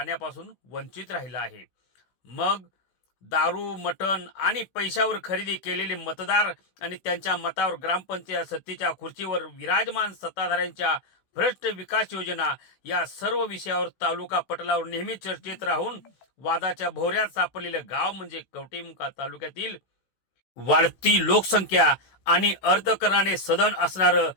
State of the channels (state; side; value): late; right; 16 ms